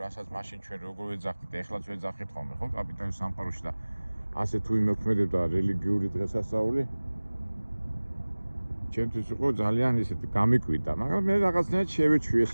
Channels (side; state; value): both; inverted; correlation -1.00